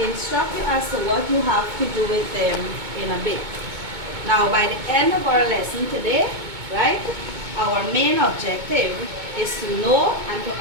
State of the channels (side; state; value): left; late; 2.2 ms